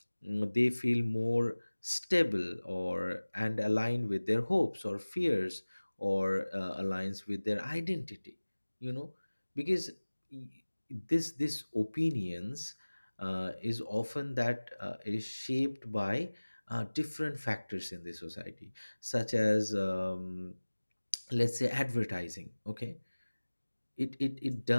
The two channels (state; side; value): inverted; both; correlation -1.00